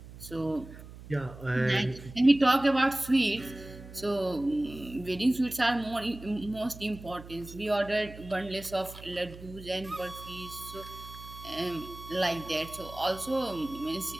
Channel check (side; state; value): right; noise; hum, 16 dB below the sound